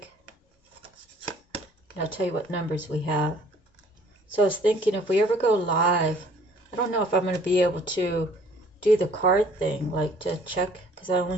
And I'll tell you what numbers we have. So I was thinking, if we ever go live, I don't know if I'm going to be able to do the card thing, like to check, because I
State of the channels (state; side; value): normal; both; correlation 0.56